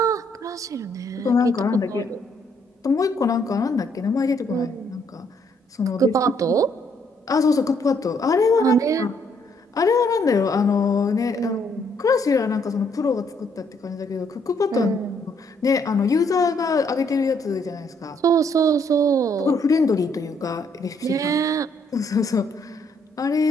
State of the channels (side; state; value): both; normal; correlation 0.70